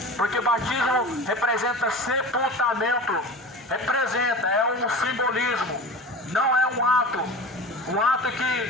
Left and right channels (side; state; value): both; normal; correlation 0.33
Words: porque batismo representa sepultamento, é um simbolismo, não é um ato